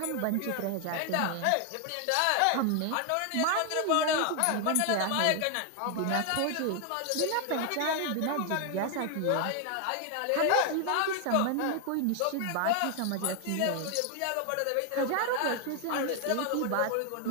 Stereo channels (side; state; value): both; different; correlation 0.00